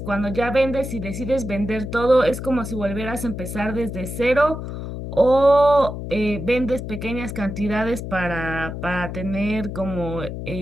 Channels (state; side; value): noise; left; hum, 7 dB below the sound